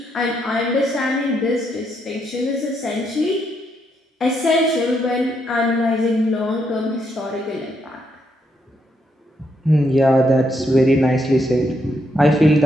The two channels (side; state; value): both; normal; correlation 0.77